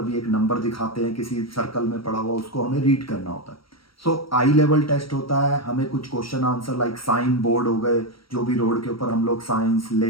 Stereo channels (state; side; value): late; right; 0.75 ms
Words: भी एक नंबर दिखाते हैं किसी सर्कल में पड़ा हुआ, उसको हमें रीड करना होता है. आई लेवल टेस्ट होता है, हमें कुछ question answer like sign board हो गए, जो भी रोड के ऊपर हम लोग साइंस